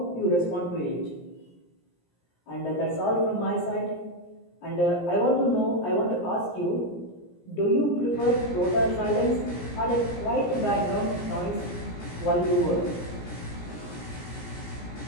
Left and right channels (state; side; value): late; right; 17 ms